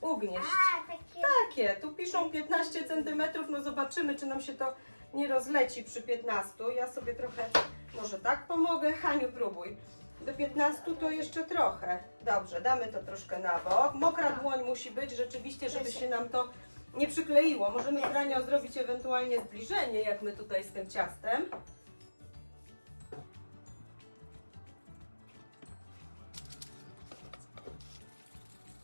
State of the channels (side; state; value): both; inverted; correlation -1.00